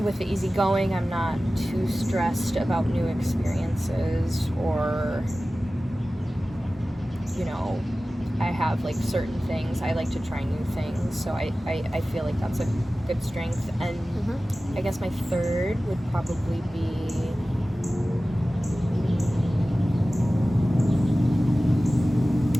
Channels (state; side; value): normal; both; correlation 0.96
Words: the easygoing, I'm not too stressed about new experiences, or, you know, I have like certain things, I like to try new things, so I feel like that's a good strength. And I guess my third would probably be